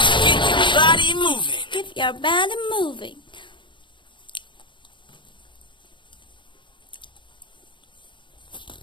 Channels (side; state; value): right; late; 0.23 ms